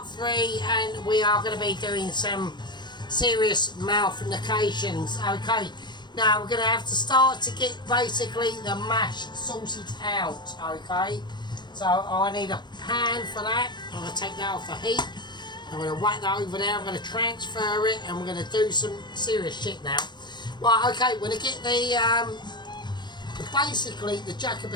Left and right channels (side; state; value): right; late; 0.21 ms